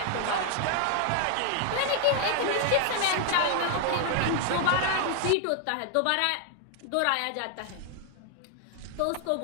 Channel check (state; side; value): different; both; correlation 0.00